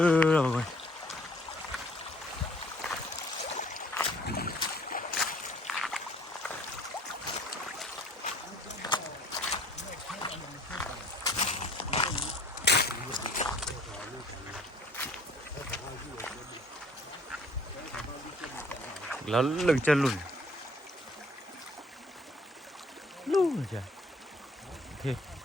rồi mọi người. Nó lưng chân lùn. Lùn rồi.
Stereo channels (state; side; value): normal; both; correlation 0.56